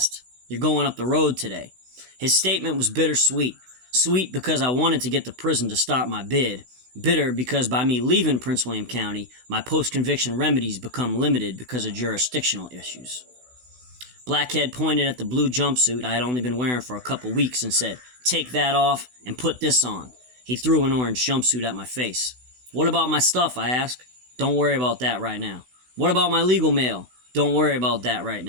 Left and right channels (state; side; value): late; left; 16 ms